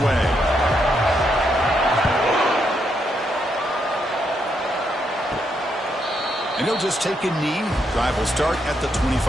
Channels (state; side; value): normal; both; correlation 0.78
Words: away. And he'll just take a knee. Drive will start at the